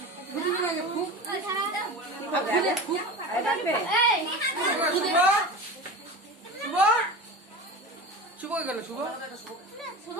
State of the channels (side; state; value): both; normal; correlation 0.30